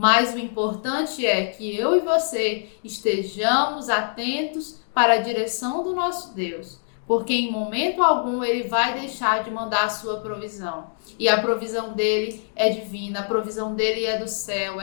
o importante é que eu e você estejamos atentos para a direção do nosso Deus, porque em momento algum Ele vai deixar de mandar a sua provisão. E a provisão dele é divina, a provisão dele é do céu,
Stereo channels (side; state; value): right; silent; digital silence